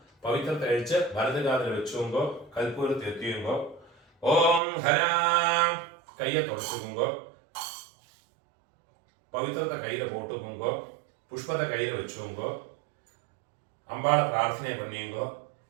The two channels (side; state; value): left; drops out; at 4.6 s